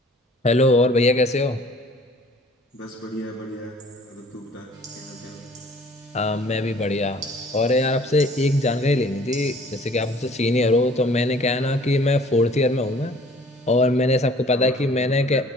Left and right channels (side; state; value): both; normal; correlation 0.53